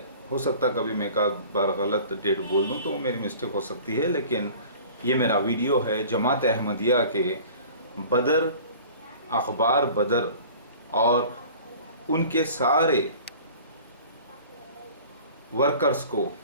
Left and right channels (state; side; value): inverted; both; correlation -0.45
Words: ہو سکتا کبھی میں ایک بار غلط ڈیٹ بول دوں تو میری مسٹیک ہو سکتی ہے، لیکن یہ میرا ویڈیو ہے جماعت احمدیہ کے بدر، اخبار بدر اور ان کے سارے ورکرز کو